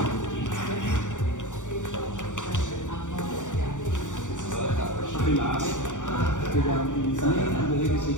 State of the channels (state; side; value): late; right; 0.86 ms